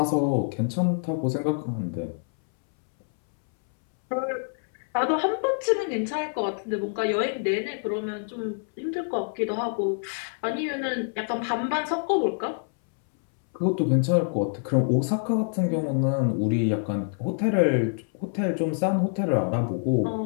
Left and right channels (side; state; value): right; silent; 61 dB below the other